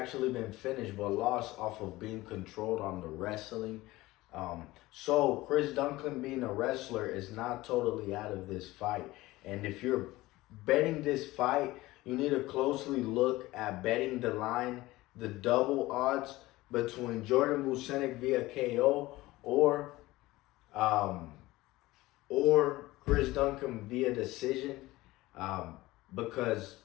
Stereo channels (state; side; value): quieter; right; 18.7 dB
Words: been finished, but lost off of being controlled on the wrestling. So Chris Duncan being a wrestler is not totally out of this fight. And if you're betting this fight, you need to closely look at betting the line, the double odds between Jordan Vucenic via KO or Chris Duncan via decision, because